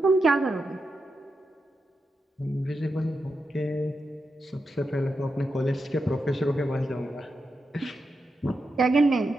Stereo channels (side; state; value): both; normal; correlation 0.87